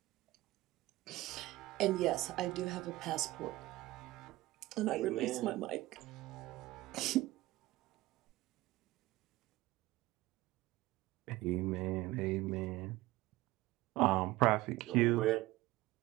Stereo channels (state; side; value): quieter; left; 18.2 dB